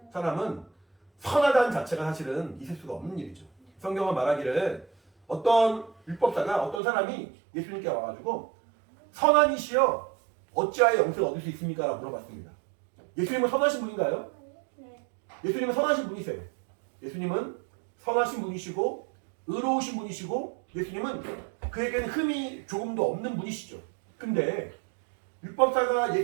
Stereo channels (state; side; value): drops out; left; at 6.8 s